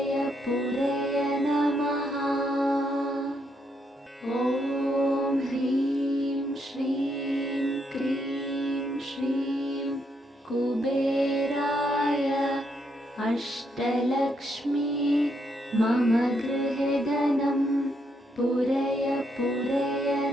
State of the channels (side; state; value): both; normal; correlation 0.77